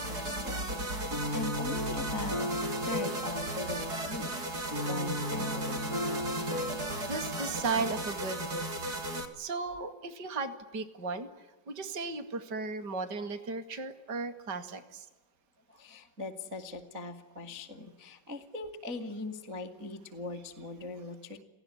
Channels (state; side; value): late; left; 4.8 ms